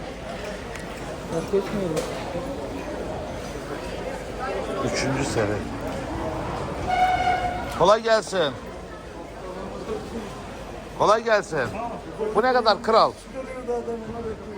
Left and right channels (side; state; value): both; identical; correlation 1.00